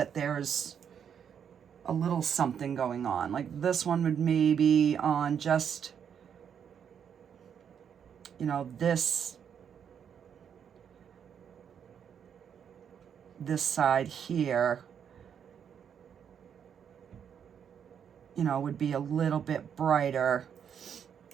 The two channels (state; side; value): quieter; left; 8.0 dB